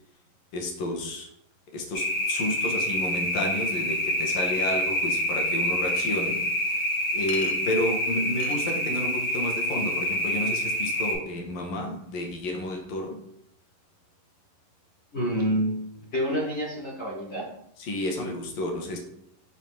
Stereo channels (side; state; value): right; late; 11 ms